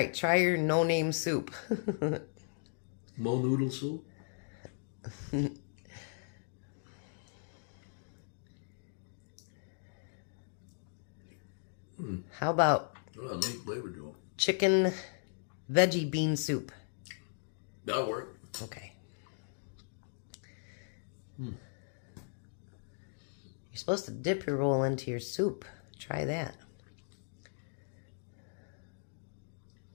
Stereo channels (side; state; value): right; silent; digital silence